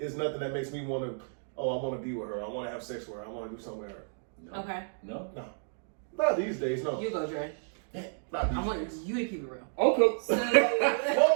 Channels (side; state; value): left; silent; digital silence